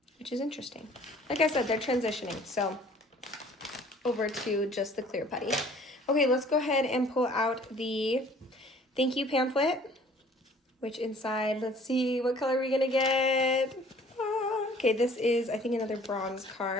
which is interesting. Like I said, they're transitioning, so over to just the clear putty. Okay, let's go ahead and pull out the thank you pamphlet, which inside, let's see, what color are we gonna get? Okay, this is, I think, another bronze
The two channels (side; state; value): both; normal; correlation 0.53